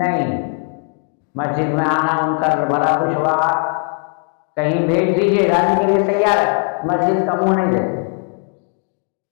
مسجد میں آنا ان کا بڑا دشوار، کہیں بھیج دیجیے جانے کے لیے تیار ہے، مسجد کا منہ نہیں دیتے۔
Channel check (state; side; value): quieter; right; 38.3 dB